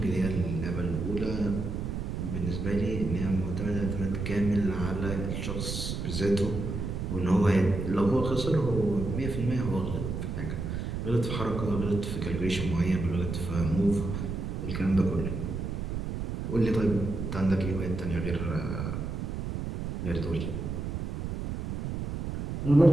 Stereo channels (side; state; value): right; noise; rumble, 4 dB below the sound